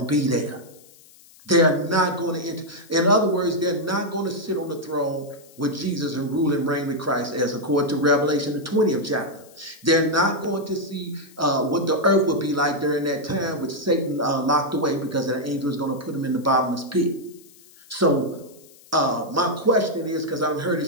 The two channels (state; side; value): noise; left; hiss, 25 dB below the sound